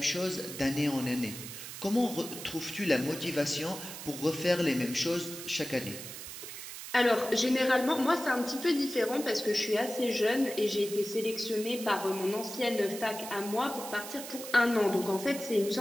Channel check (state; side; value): noise; right; hiss, 10 dB below the sound